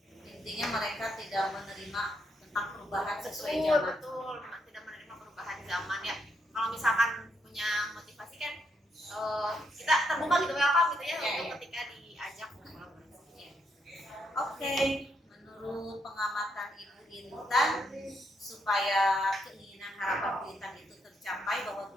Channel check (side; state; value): both; normal; correlation 0.77